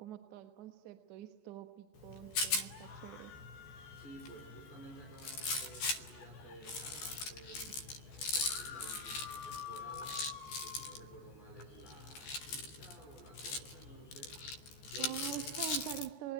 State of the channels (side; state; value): right; late; 14 ms